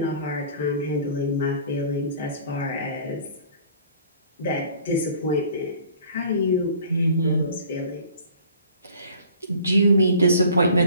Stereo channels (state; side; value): inverted; both; correlation -0.49